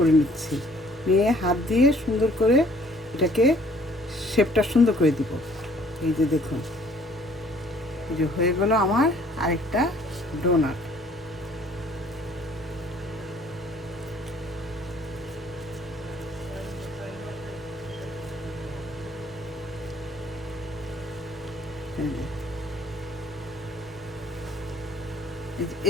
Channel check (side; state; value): both; normal; correlation 0.58